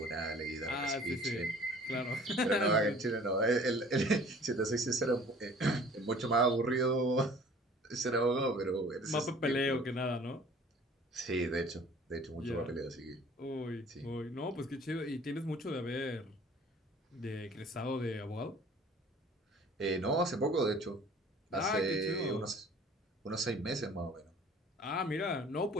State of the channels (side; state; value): both; normal; correlation 0.50